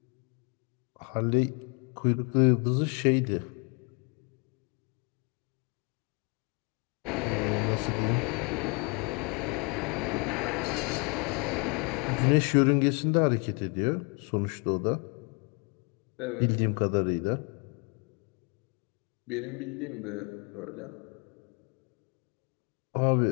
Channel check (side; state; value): right; quieter; 32.6 dB